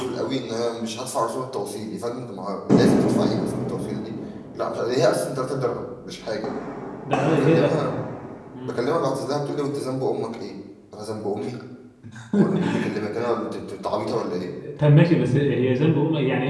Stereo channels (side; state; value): both; identical; correlation 1.00